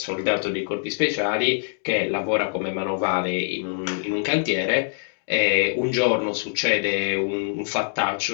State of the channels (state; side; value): silent; right; digital silence